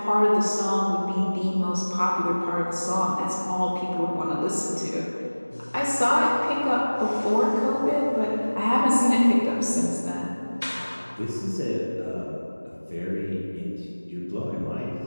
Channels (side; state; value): both; inverted; correlation -1.00